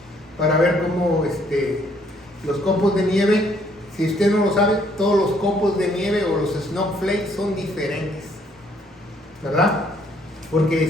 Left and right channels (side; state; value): both; normal; correlation 0.66